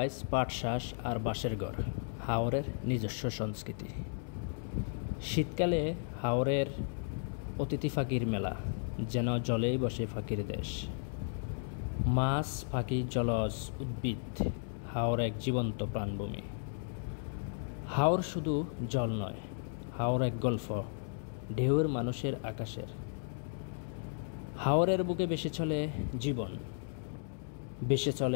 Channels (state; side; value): silent; right; digital silence